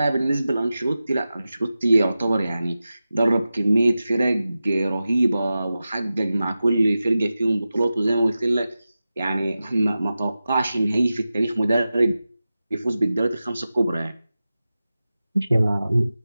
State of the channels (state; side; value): inverted; both; correlation -0.94